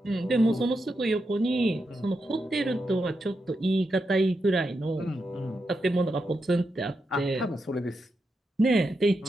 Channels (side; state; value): both; normal; correlation 0.86